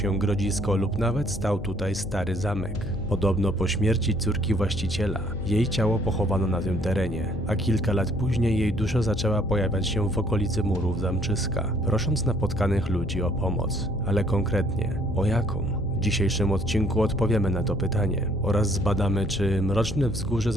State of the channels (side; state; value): left; noise; hum, 12 dB below the sound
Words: grodzisko lub nawet stał tutaj stary zamek. Podobno po śmierci córki właściciela, jej ciało pochowano na tym terenie, a kilka lat później jej dusza zaczęła pojawiać się w okolicy murów zamczyska, prosząc napotkanych ludzi o pomoc. Ale konkretnie, o jaką? W dzisiejszym odcinku odpowiemy na to pytanie oraz zbadamy, czy mroczne wzgórze